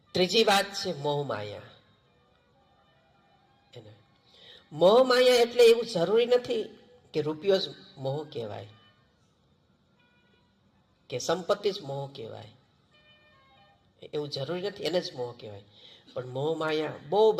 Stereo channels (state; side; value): identical; both; correlation 1.00